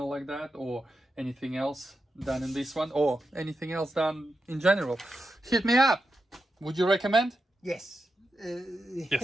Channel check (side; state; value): both; normal; correlation 0.88